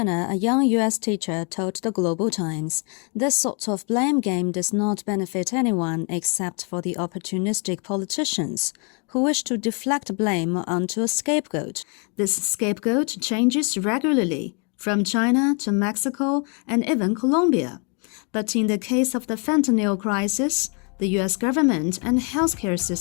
a young U.S. teacher, told the Global Times, this sort of blame game does not benefit anyone except for the opportunistic politicians who wish to deflect blame onto a scapegoat. This scapegoat changes regularly, from China to Mexico and even Colombia. But in the case of the fentanyl crisis, the U.S. government and healthcare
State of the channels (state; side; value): quieter; right; 36.3 dB